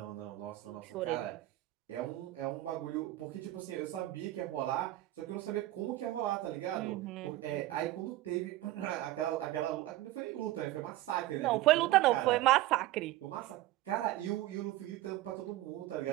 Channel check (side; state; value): left; quieter; 16.1 dB